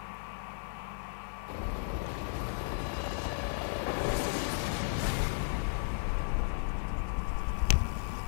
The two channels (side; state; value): right; silent; digital silence